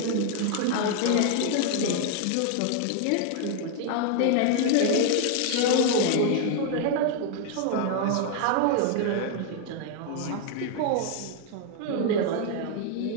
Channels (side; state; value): both; different; correlation 0.00